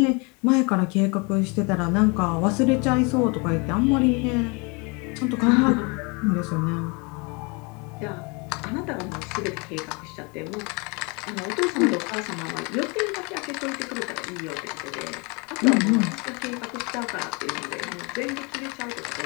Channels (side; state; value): right; quieter; 30.6 dB